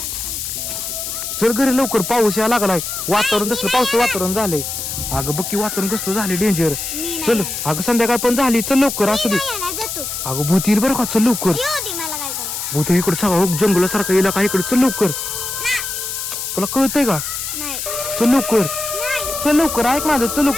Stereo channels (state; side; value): noise; left; hiss, 5 dB below the sound